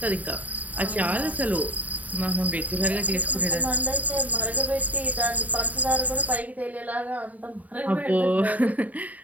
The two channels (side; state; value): left; late; 0.074 ms